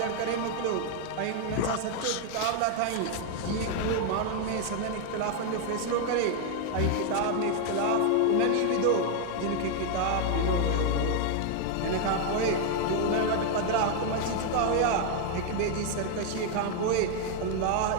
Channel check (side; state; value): both; different; correlation 0.00